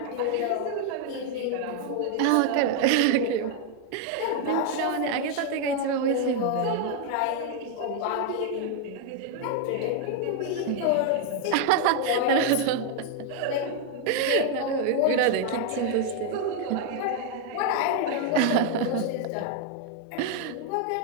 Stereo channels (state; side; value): different; both; correlation 0.00